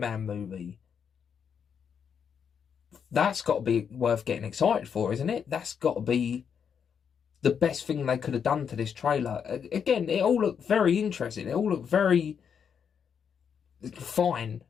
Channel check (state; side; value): quieter; right; 7.3 dB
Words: movie. That's got to be worth getting excited for, isn't it? That's got to be the best thing they could have done to this trailer. Again, it all looked very interesting. It all looked very fine.